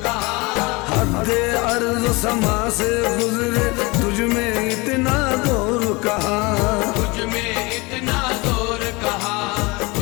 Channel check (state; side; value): quieter; right; 25.5 dB